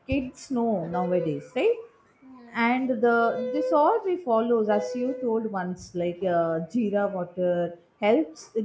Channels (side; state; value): both; identical; correlation 1.00